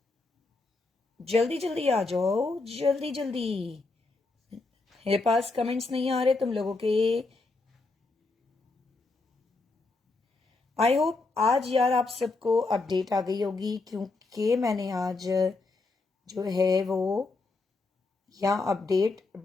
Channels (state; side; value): quieter; right; 3.6 dB